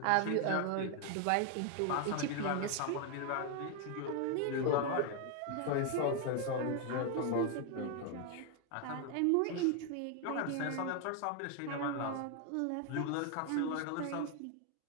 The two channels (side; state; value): both; different; correlation 0.01